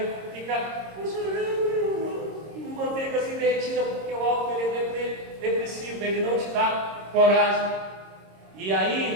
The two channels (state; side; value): late; left; 26 ms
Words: fica chorando, manteiga assim derretida, porque o álcool ele é depressivo, ele não te dá coragem. E